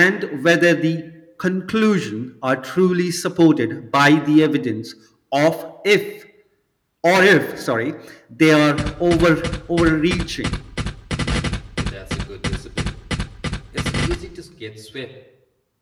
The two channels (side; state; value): both; identical; correlation 1.00